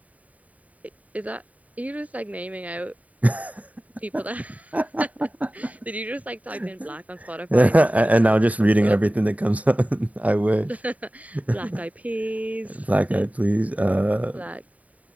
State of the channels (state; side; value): late; left; 0.070 ms